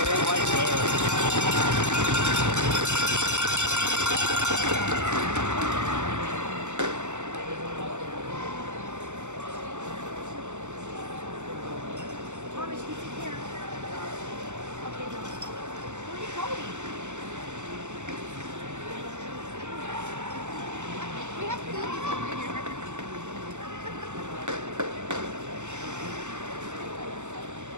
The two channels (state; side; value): late; left; 0.84 ms